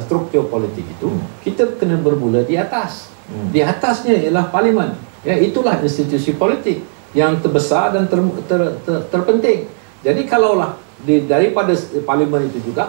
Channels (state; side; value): silent; left; 60 dB below the other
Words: struktur politik itu, kita kena bermula di atas. Di atasnya ialah Parlimen. Itulah institusi politik yang terbesar dan terpenting. Jadi kalaulah daripada Parlimen itu